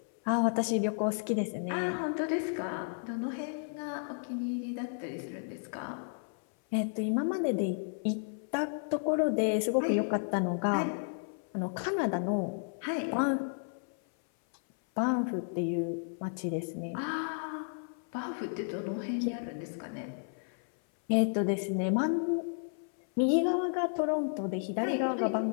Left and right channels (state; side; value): silent; right; 56 dB below the other